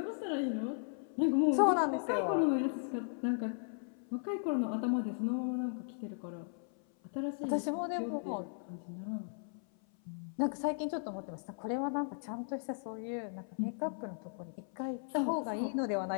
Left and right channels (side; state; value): right; silent; 53 dB below the other